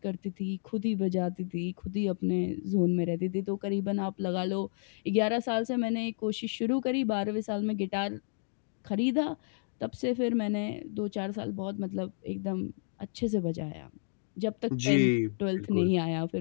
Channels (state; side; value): silent; right; digital silence